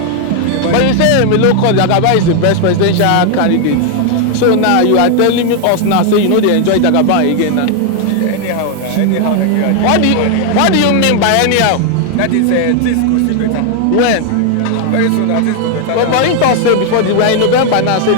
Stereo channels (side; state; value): both; different; correlation 0.00